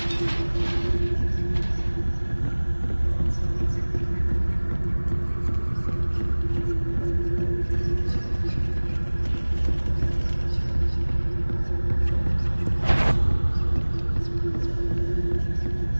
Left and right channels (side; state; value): both; inverted; correlation -1.00